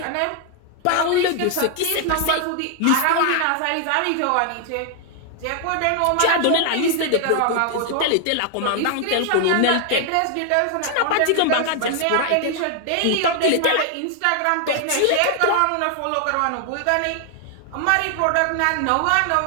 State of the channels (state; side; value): different; both; correlation 0.00